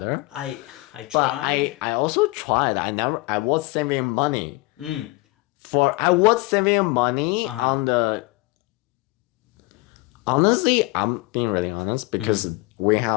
I tried. But I also tried. I was saving money. I was saving money on the. Honestly, I'm being really honest because we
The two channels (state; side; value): quieter; right; 22.9 dB